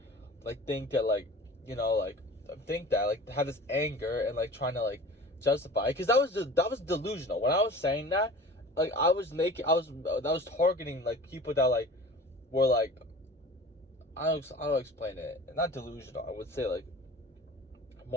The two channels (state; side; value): normal; both; correlation 0.41